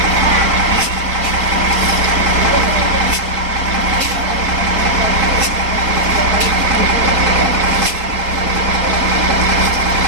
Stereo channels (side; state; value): left; late; 4.2 ms